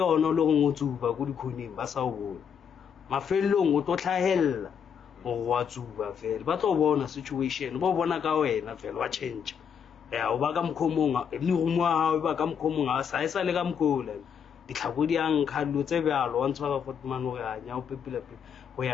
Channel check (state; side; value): quieter; right; 7.5 dB